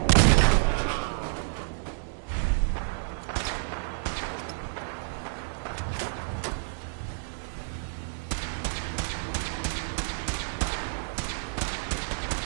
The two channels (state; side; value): silent; left; 58 dB below the other